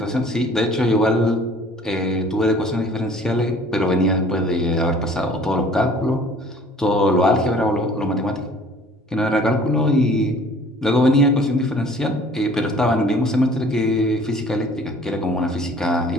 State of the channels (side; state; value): both; normal; correlation 0.51